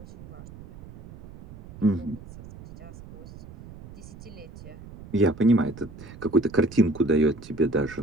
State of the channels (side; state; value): right; noise; rumble, 17 dB below the sound